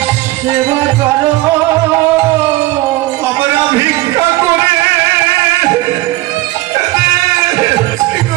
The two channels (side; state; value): left; quieter; 18.8 dB